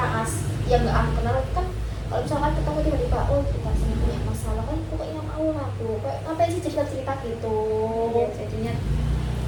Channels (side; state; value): both; identical; correlation 1.00